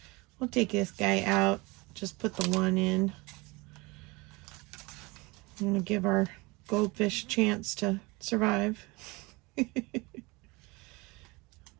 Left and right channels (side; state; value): left; quieter; 24.9 dB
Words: We'll take this guy out, just put the one in. I'm gonna give our goldfish a chance to survive. I